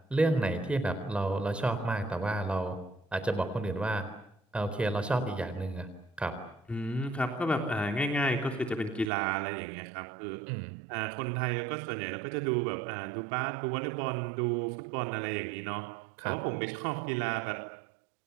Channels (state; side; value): drops out; left; at 9.1 s